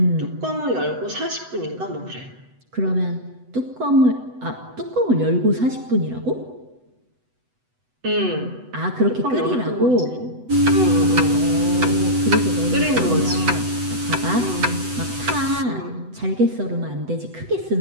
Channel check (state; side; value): late; left; 8.0 ms